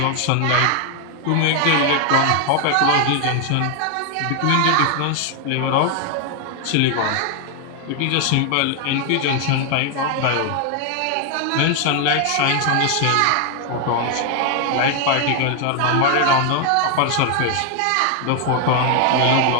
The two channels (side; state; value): both; different; correlation 0.00